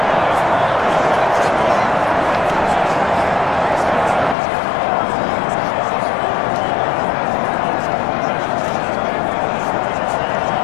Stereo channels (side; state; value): right; drops out; at 4.4 s